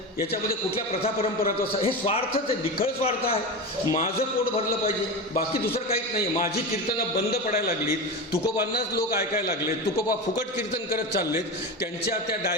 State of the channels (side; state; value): both; normal; correlation 0.23